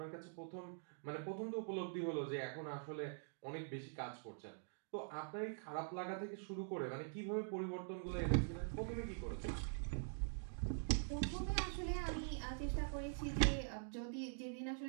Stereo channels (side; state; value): left; silent; digital silence